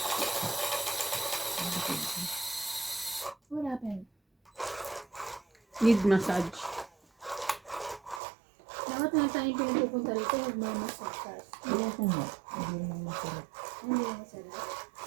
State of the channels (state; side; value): drops out; left; at 8.2 s